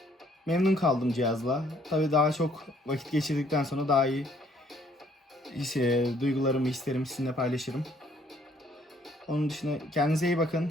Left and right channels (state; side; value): normal; both; correlation 0.64